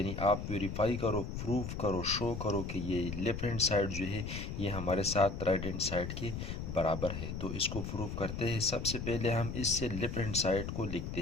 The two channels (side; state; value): left; noise; rumble, 5 dB below the sound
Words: आप वेरीफाई करो, प्रूफ करो, शो करो कि ये लेफ्ट हैंड साइड जो है ये हमारे साथ राइट हैंड साइड के बराबर है। तो इसको प्रूफ करते हैं। सबसे पहले हम इससे लेफ्ट हैंड साइड को लिखते